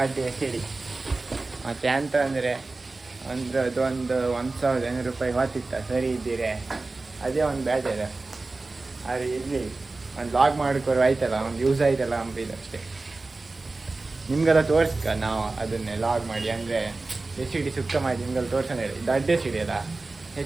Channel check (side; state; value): left; quieter; 3.4 dB